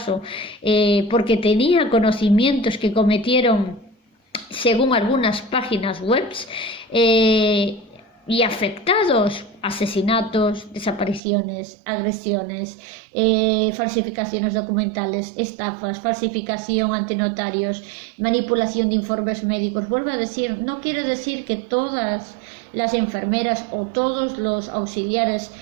porque tenía conocimientos que cometieron según algunas páginas web, y afectados, asesinatos, desapariciones, agresiones, falsificaciones documentales, estafas, falsificación ante notarios, manipulación de informes médicos. Vuelvo a decir, no quiere decir que todas las enfermeras o todos los auxiliares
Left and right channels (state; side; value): drops out; left; at 11.2 s